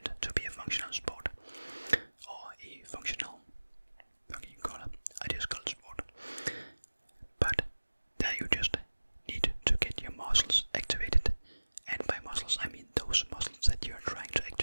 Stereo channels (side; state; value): both; inverted; correlation -1.00